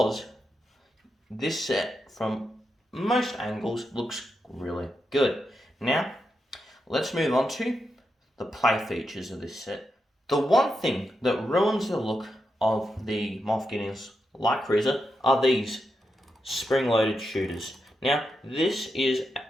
this set from most angles looks really good. Now, let's move on to the play features of this set. The one thing that ruins the look of the Moff Gideon's light cruiser are these spring-loaded shooters. Now, this isn't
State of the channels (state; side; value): normal; both; correlation 0.86